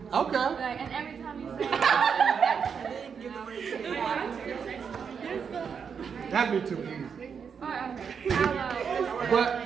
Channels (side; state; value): left; quieter; 6.6 dB